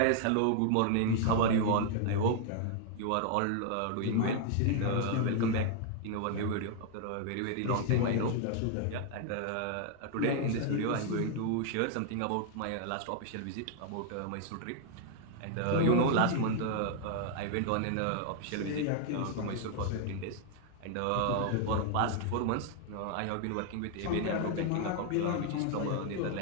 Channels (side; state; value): both; different; correlation 0.00